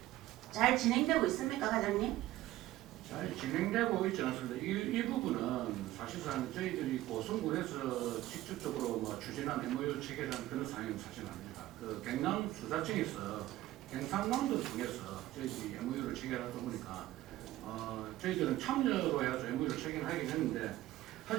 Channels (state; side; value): quieter; left; 15.7 dB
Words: 진행되고 있습니까, 과장님? 잘 진행되고 있지 않습니다. 이 부분은 사실상 저희들이 고성군에서 직접적으로 뭐 추진한 MOU 체결한 그런 사항은 사실 아닙니다. 그 경남 수사청에서 경상남도 통해서 저희들이 MOU를 체결하다 보니까 저희들은 참여로 해서 MOU를 체결하긴 했는데